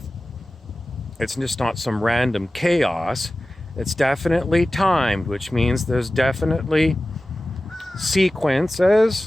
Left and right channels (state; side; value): normal; both; correlation 0.95